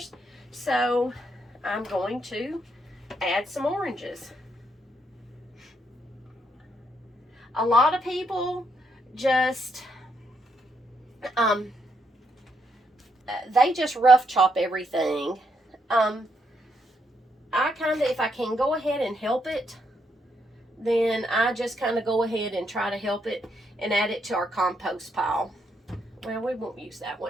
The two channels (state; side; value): normal; both; correlation 0.77